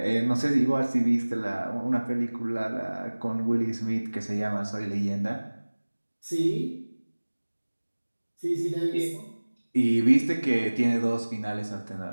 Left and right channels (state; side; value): inverted; both; correlation -1.00